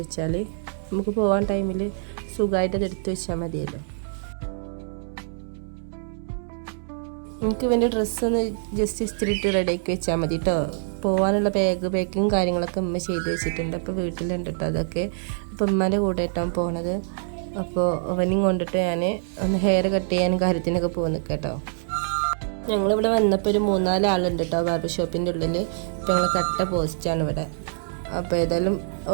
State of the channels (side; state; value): left; silent; digital silence